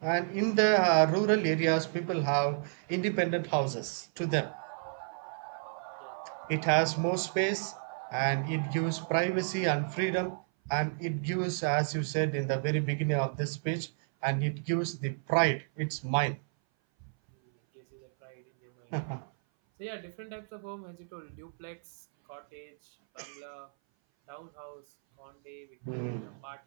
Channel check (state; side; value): silent; left; 57 dB below the other